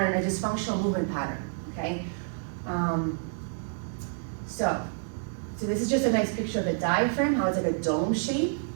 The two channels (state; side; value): silent; left; 56 dB below the other